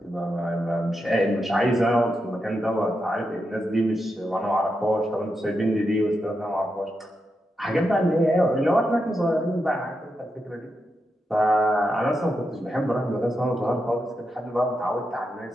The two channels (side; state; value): both; normal; correlation 0.86